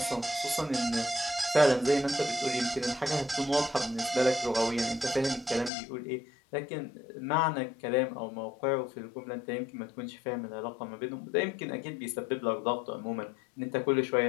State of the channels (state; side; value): drops out; right; at 5.7 s